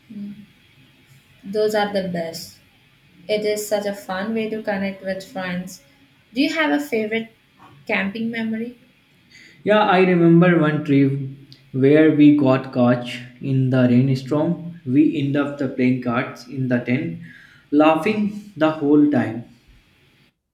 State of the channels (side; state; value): both; identical; correlation 1.00